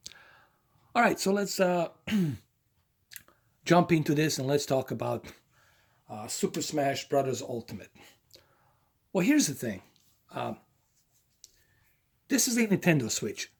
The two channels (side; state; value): both; identical; correlation 1.00